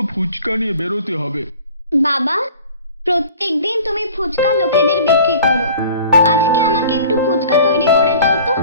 ফুচকা নিয়ে বেরোতে হবে। বাবা, প্রত্যেকদিন তুমি ফুচকা লোকেদের বিক্রি করো, আজকে আমাকে একটু ফুচকা তৈরি করে দাও তো,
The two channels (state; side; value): inverted; both; correlation -0.47